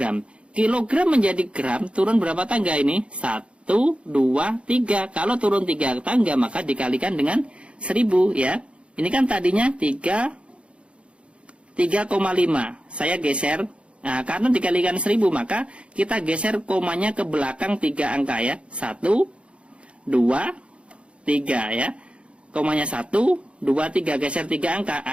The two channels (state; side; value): late; left; 0.059 ms